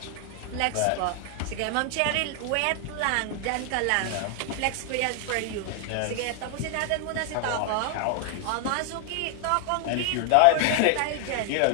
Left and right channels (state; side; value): different; both; correlation 0.00